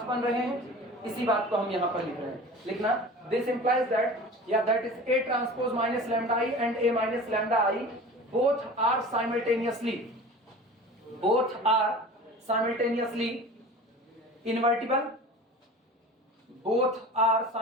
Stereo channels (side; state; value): both; normal; correlation 0.38